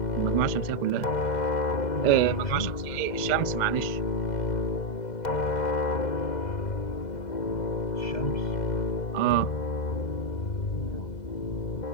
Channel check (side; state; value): right; late; 2.0 ms